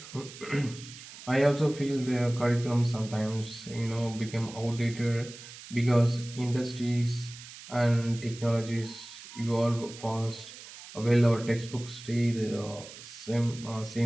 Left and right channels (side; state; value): right; noise; hiss, 15 dB below the sound